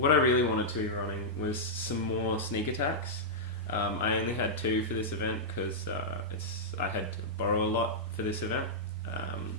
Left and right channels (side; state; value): both; normal; correlation -0.09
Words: I really wanted to be running was some more Sneak Attacks. I only had 2 for this event because I had to borrow a lot for this event.